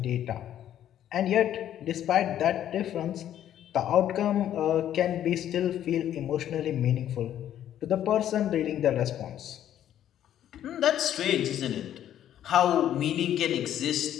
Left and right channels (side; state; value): right; quieter; 11.1 dB